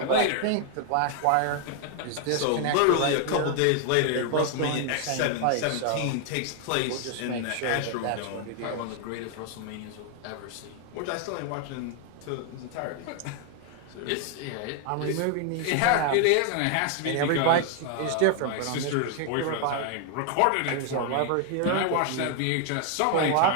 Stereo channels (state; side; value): different; both; correlation 0.00